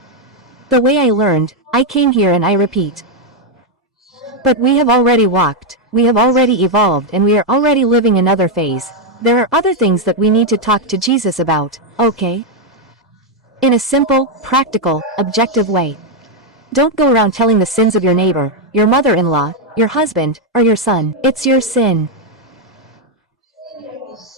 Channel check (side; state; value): both; normal; correlation 0.02